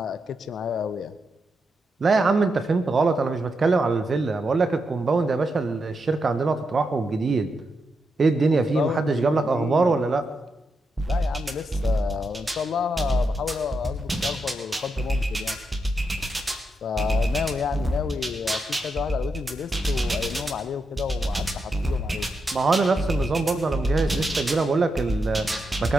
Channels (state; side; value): normal; both; correlation 0.84